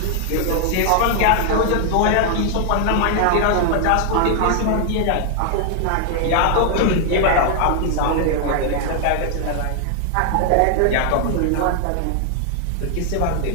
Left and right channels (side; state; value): both; different; correlation 0.00